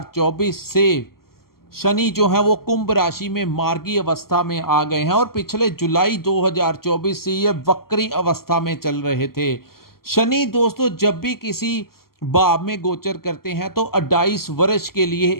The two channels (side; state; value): right; late; 0.93 ms